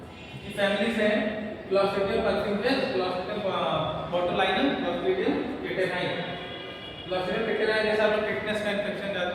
की फैमिलीज हैं। Clostridium perfringens, Clostridium botulinum, Clostridium tetani. Clostridium tetani जैसे आप लोग टिटनेस का इन्फेक्शन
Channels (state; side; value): identical; both; correlation 1.00